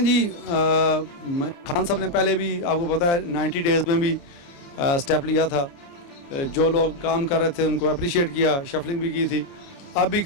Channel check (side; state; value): right; late; 29 ms